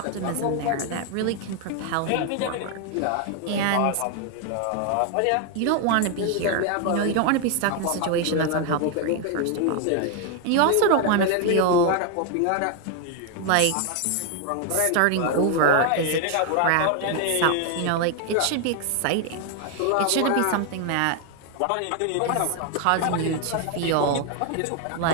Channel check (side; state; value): both; different; correlation 0.01